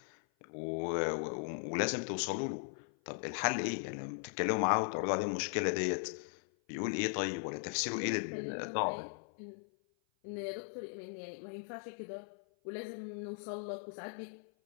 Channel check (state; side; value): silent; right; 52 dB below the other